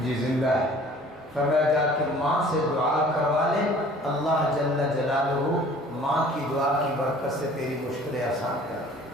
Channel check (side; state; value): both; normal; correlation 0.50